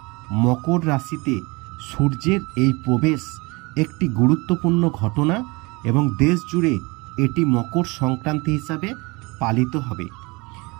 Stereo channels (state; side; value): quieter; left; 25.9 dB